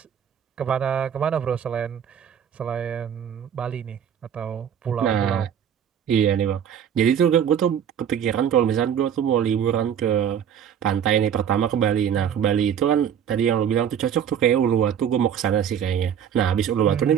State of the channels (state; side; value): quieter; left; 8.7 dB